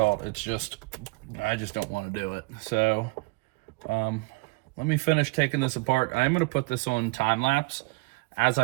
it's just, I just don't want to do it. So, let me finish taking this apart. I'm going to put this on time lapse. As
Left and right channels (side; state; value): left; quieter; 26.6 dB